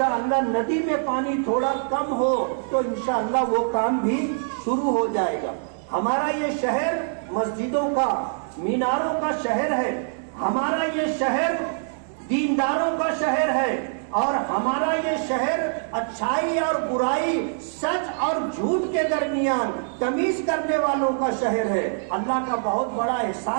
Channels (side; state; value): left; silent; digital silence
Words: ندی میں پانی تھوڑا کم ہو تو انشاءاللہ وہ کام بھی شروع ہو جائے گا۔ ہمارا یہ شہر مسجدوں کا، میناروں کا شہر ہے، ہمارا یہ شہر دینداروں کا شہر ہے، اور ہمارا یہ شہر اچھائی اور برائی، سچ اور جھوٹ کے درمیان تمیز کرنے والوں کا شہر ہے۔ اللہ کا بہت بڑا